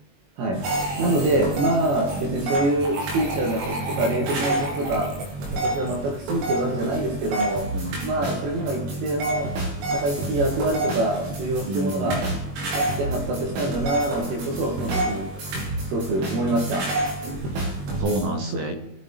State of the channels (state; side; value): late; left; 21 ms